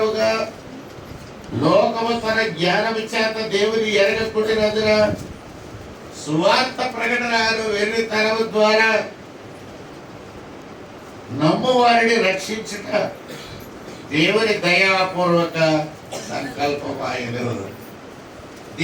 లోకము తన జ్ఞానము చేత దేవుని ఎరగకుండినందున సువార్త ప్రకటనను వెర్రితనము ద్వారా నమ్ము వారిని రక్షించుట దేవుని దయాపూర్వక సంకల్పమాయను.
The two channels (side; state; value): both; identical; correlation 1.00